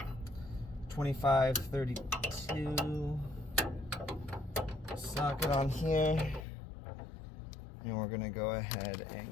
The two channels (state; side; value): drops out; right; at 6.5 s